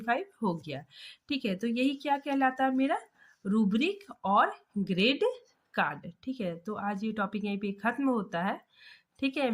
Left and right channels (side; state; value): both; identical; correlation 1.00